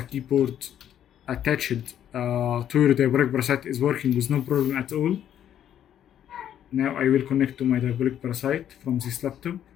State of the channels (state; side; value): quieter; right; 10.3 dB